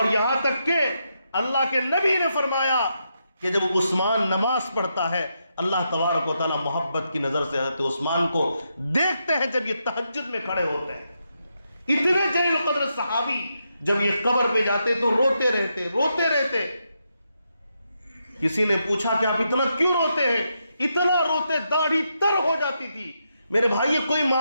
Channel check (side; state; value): both; inverted; correlation -0.82